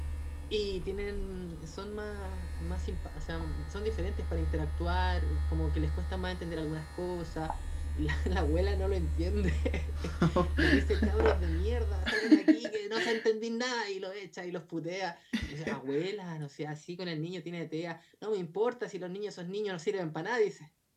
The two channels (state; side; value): identical; both; correlation 1.00